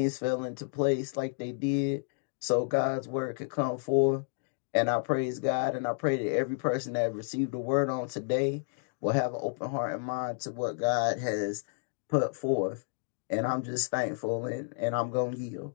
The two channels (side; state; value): right; silent; digital silence